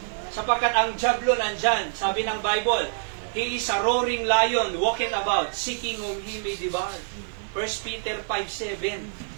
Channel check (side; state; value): left; silent; 61 dB below the other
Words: Sapagkat ang diablo nandyan, sabi ng Bible, he is a roaring lion, walking about, seeking whom he may devour. 1 Peter 5:7.